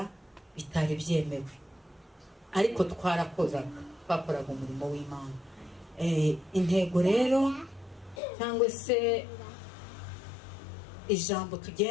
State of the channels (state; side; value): drops out; right; at 8.2 s